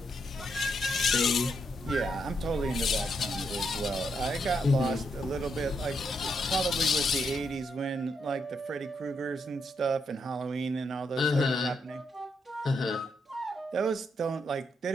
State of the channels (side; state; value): both; normal; correlation 0.79